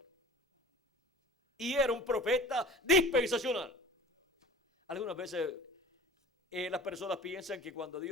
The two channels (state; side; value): normal; both; correlation 0.41